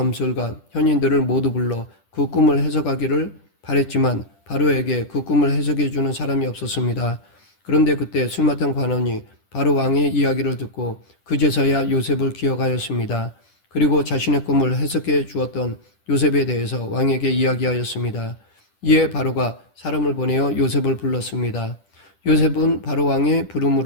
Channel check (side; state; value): right; late; 10 ms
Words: 현인들을 모두 불러 그 꿈을 해석하기를 바랬지만 바로에게 그 꿈을 해석해 주는 사람이 없었습니다. 그런데 그때 술 맡은 관원이 바로 왕의 이야기를 듣고 그제서야 요셉을 기억하였습니다. 그리고 자신의 꿈을 해석해 주었던 요셉에 대해서 왕에게 이야기하였습니다. 이에 바로가 사람을 보내어 요셉을 불렀습니다. 요셉은 바로 왕의